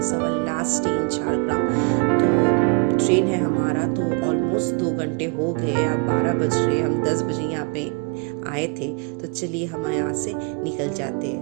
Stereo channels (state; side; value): quieter; left; 32.6 dB